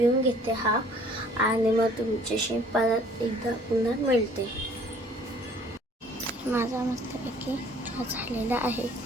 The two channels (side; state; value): both; normal; correlation 0.56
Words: घेते हा, आणि मग तुमच्याशी परत एकदा पुन्हा मिळते. माझा मस्तपैकी चहा